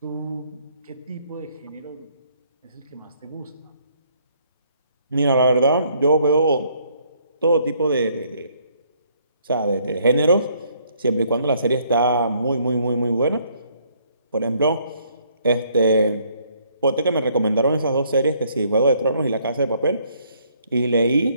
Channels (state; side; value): inverted; both; correlation -0.66